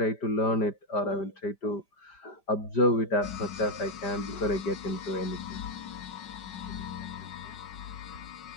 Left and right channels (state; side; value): late; right; 5.4 ms